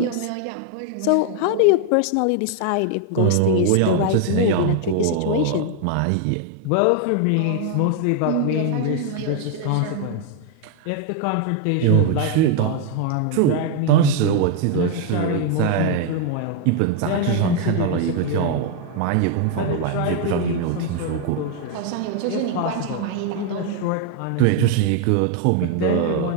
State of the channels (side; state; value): both; different; correlation 0.00